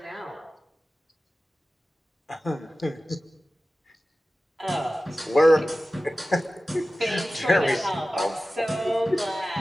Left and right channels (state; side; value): normal; both; correlation 0.95